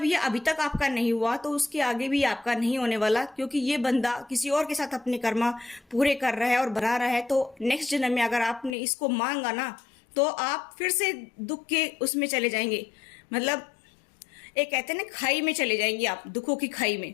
ये अभी तक आपका नहीं हुआ तो उसके आगे भी आपका नहीं होने वाला, क्योंकि ये बंदा किसी और के साथ अपने कर्मा पूरे कर रहा है और बढ़ा रहा है। तो नेक्स्ट जन्म में अगर आपने इसको मांगा ना तो आप फिर से दुख के उसमें चले जाएंगे, मतलब एक कहते हैं ना खाई में चले जाएंगे आप, दुखों की खाई में।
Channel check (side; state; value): right; drops out; at 8.8 s